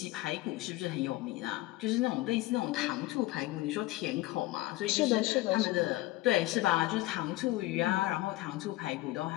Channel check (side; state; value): right; quieter; 18.3 dB